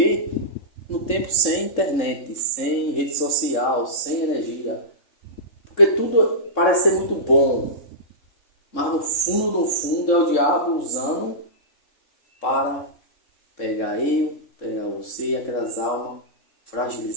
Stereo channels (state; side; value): late; right; 3.7 ms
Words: no tempo sem internet, sem rede social, sem energia. Porque tudo parece ser muito bom. Mas no fundo é o diabo usando para pegar você e aquelas almas